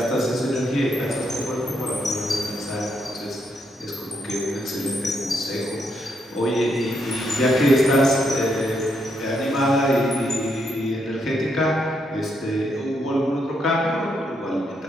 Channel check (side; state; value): both; normal; correlation 0.77